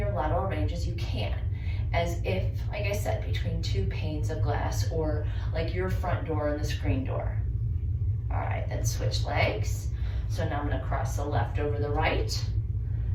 lateral range as you can, as if, like I said, between two panes of glass, or like your front door and the screen door. All right, then switch legs. So now I'm gonna cross the left over the right,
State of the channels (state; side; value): identical; both; correlation 1.00